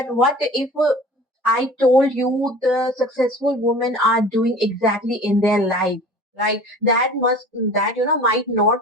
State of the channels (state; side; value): normal; both; correlation 0.42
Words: what if I told you the successful women are doing exactly in their life? Right, that might not